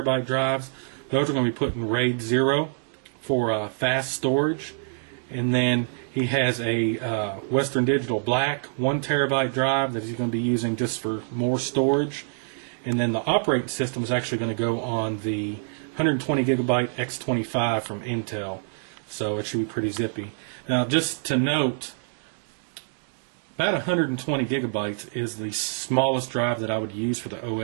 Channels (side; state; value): left; silent; digital silence